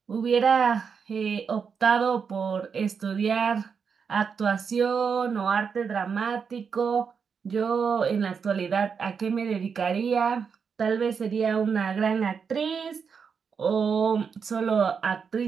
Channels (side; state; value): left; quieter; 6.2 dB